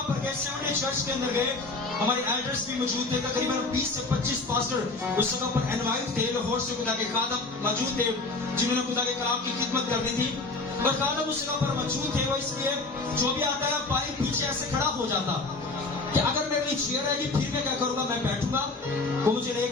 पर गए, 70 चर्च के अंदर गए, हमारे एल्डर्स भी मौजूद थे, तकरीबन 20 से 25 पास्टर उस जगह पर इनवाइट थे, लाहौर से खुदा के खादम मौजूद थे जिन्होंने खुदा के कलाम की खिदमत करनी थी, और खादम उस जगह पर मौजूद थे। वो इसलिए जो भी आता है पाइप पीछे ऐसे खड़ा हो जाता कि अगर मेरे लिए चेयर आएगी फिर मैं क्या करूंगा, मैं बैठूंगा, वो मुझे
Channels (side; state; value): right; quieter; 3.5 dB